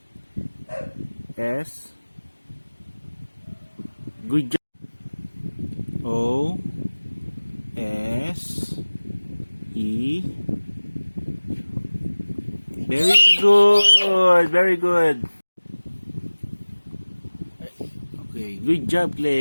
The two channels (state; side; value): inverted; both; correlation -1.00